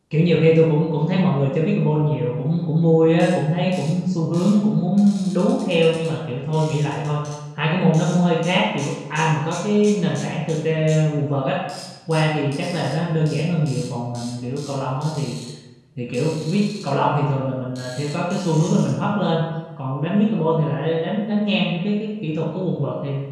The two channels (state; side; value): identical; both; correlation 1.00